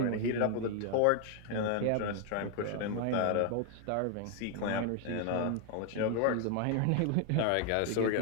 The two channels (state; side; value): different; both; correlation 0.00